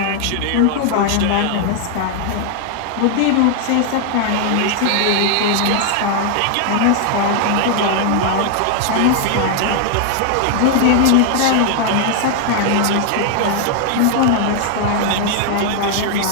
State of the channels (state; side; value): different; both; correlation 0.00